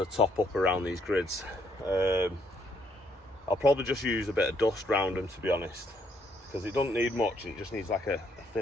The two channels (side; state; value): both; normal; correlation 0.70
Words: top up around these grids. I'll probably just use a bit of dust around them, to be honest, because it doesn't need much. It just needs like a